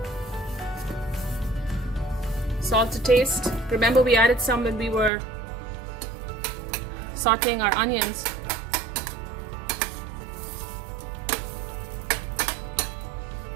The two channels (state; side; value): drops out; left; at 5.1 s